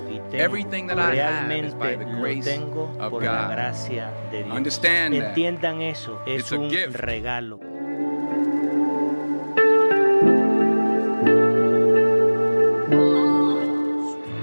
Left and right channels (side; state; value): both; inverted; correlation -1.00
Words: y tengo, everything that I have is by realmente the lo grace tengo of por la God. gracia de Dios. Understand that. Entiendan eso, es It's a un gift. regalo.